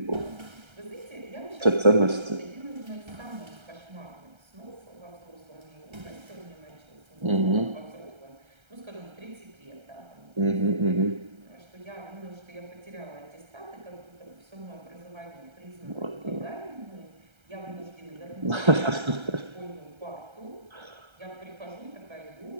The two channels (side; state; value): left; late; 1.3 ms